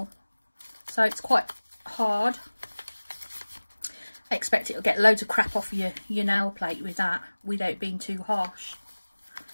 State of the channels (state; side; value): inverted; both; correlation -1.00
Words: so it's quite hard. I expect it'll get loads of crap off your nail plate with that without being too harsh.